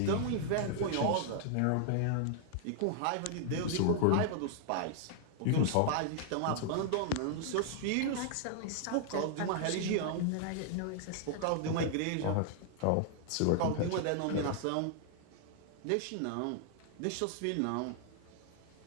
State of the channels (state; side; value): different; both; correlation 0.00